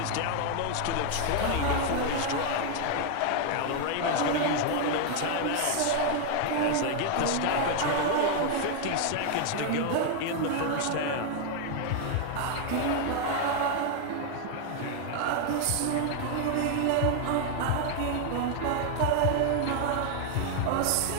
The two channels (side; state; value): both; different; correlation 0.00